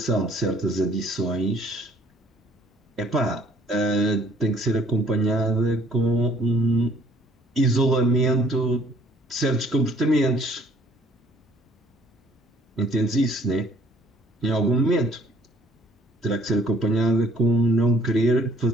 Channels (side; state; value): both; normal; correlation 0.59